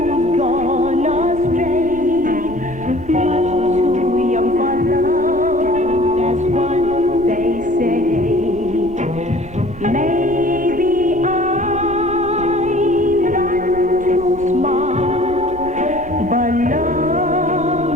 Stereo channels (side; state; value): right; noise; rumble, 17 dB below the sound